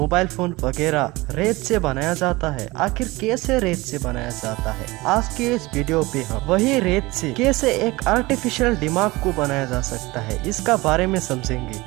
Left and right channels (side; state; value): left; quieter; 21.6 dB